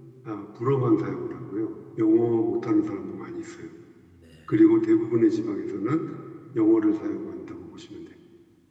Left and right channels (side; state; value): both; identical; correlation 1.00